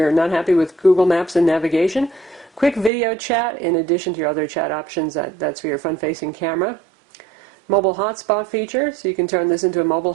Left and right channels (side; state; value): left; drops out; at 2.9 s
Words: not happy with Google Maps and navigation. Quick video chat, in addition to your other chat options. That's for your front-facing camera. Mobile hotspot feature, so you can turn this into a mobile